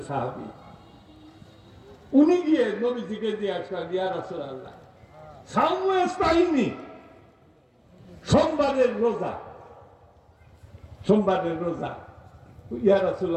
সাহাবী, উনি গিয়ে নবীজিকে জিজ্ঞাসা করেন, ইয়া রাসূলুল্লাহ সাওমু ইস্তাইনি, সোমবারের রোজা, সোমবারের রোজা, ইয়া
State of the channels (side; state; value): both; identical; correlation 1.00